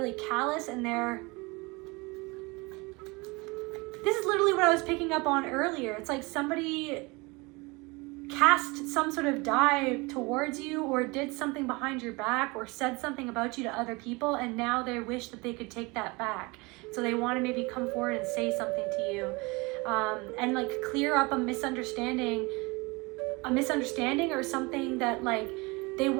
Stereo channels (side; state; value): left; quieter; 25.8 dB